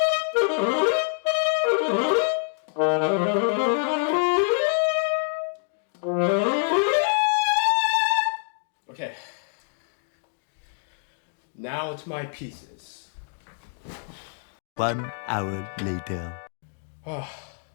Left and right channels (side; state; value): right; silent; 61 dB below the other